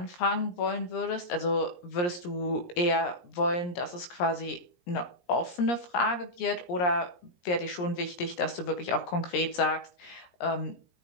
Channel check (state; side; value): late; right; 17 ms